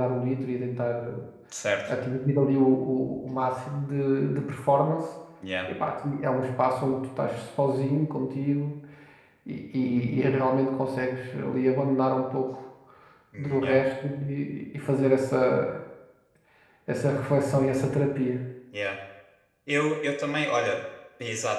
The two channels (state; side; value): identical; both; correlation 1.00